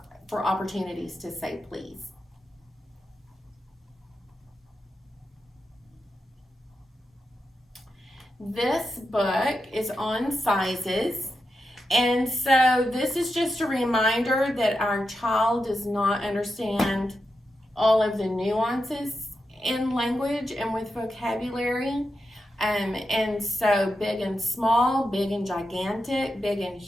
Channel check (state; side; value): normal; both; correlation 0.88